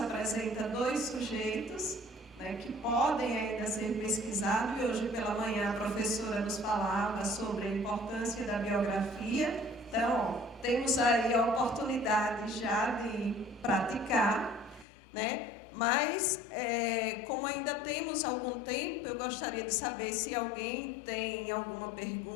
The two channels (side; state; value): right; drops out; at 14.9 s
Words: 2 sujeitos que podem ainda ser pesquisados, e hoje pela manhã a professora nos falava sobre a importância da biografia. Então, temos aí a oportunidade já de praticar, Mas, como ainda temos algum tempo, eu gostaria de saber se alguém tem alguma